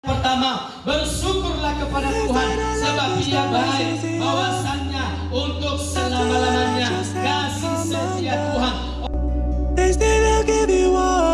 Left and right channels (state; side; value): identical; both; correlation 1.00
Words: bersama. Bersyukurlah kepada Tuhan sebab Dia baik, bahwasannya untuk selama-lamanya kasih setia Tuhan. They say they'll give you